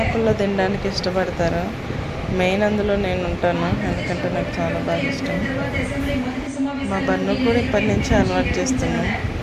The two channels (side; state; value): both; identical; correlation 1.00